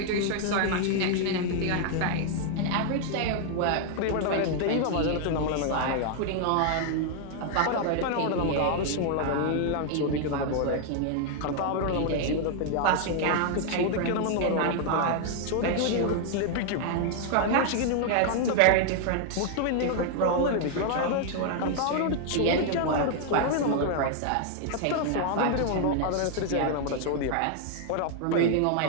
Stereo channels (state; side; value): different; both; correlation 0.00